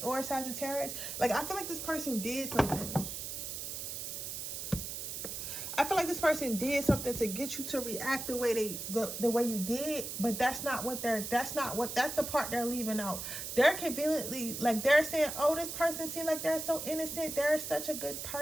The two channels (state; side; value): noise; right; hiss, 6 dB below the sound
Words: or Sagittarius. Like, I feel like this person did something. I feel like this person did something to get you to react the way the way you did, but that's the part they're leaving out. They're conveniently, like, they're saying, oh, this person seems like they're so innocent, they're such a good